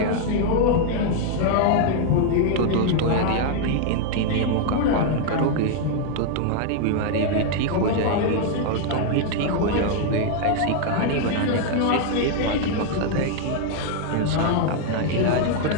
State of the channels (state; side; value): different; both; correlation 0.00